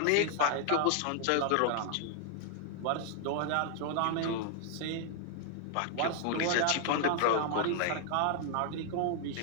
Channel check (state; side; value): different; both; correlation 0.00